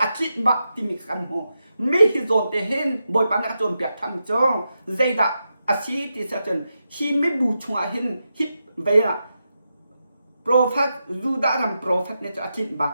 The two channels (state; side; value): inverted; both; correlation -0.88